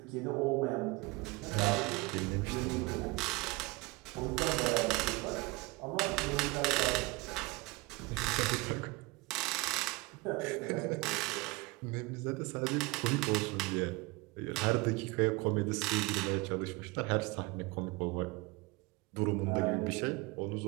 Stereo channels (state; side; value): quieter; left; 23.4 dB